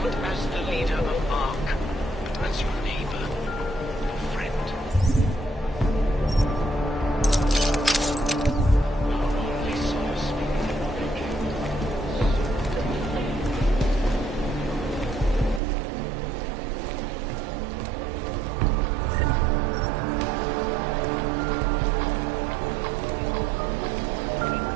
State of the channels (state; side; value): drops out; left; at 15.6 s